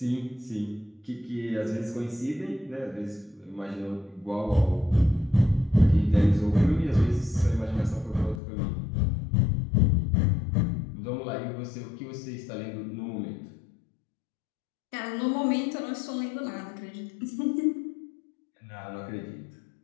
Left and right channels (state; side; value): drops out; right; at 8.4 s